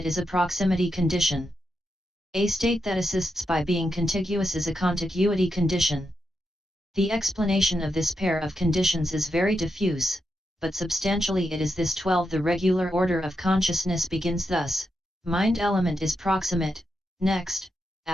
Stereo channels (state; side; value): normal; both; correlation 0.85